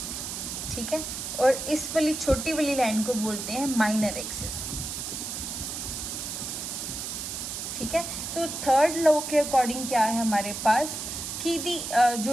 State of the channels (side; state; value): right; noise; hiss, 5 dB below the sound